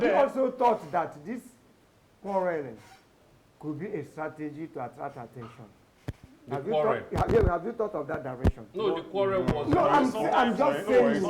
you then- also thought that this quarreling could be a strategy to attract attention? The Have you, quarrel. thought, have you thought of that direction? No, the quarrel was. No, I'm Sometimes just it's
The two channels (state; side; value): identical; both; correlation 1.00